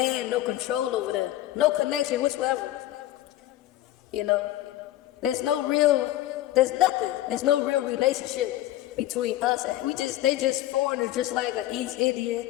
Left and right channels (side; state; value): right; quieter; 14.7 dB